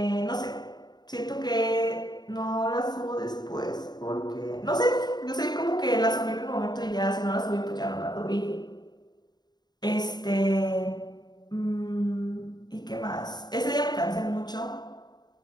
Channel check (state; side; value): late; right; 0.20 ms